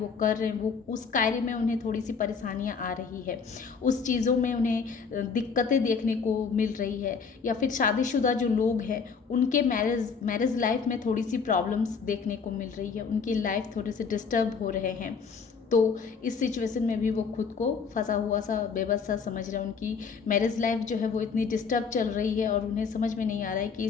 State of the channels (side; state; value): right; quieter; 5.6 dB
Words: कर रहे हैं, वो उस कार्य में उन्हें थोड़ी सी परेशानियां आ रही है। उस चीज़ों में उन्हें दिक्कतें देखने को मिल रही है। या फिर शादीशुदा जो लोग हैं उनके मैरिज लाइफ में थोड़ी सी प्रॉब्लम्स देखने को मिल रही है, उनकी लाइफ थोड़े से डिस्टर्ब हो रहे हैं। तो इस सिचुएशन में भी वो खुद को फंसा हुआ सा, बेबस सा समझ रहे हैं। उनकी मैरिज लाइफ जो है वो इतनी डिस्टर्ब चल रही है और उन्हें समझ में नहीं आ रहा है कि